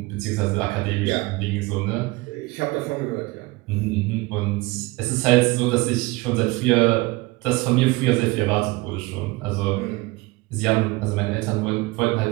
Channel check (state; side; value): quieter; left; 22.2 dB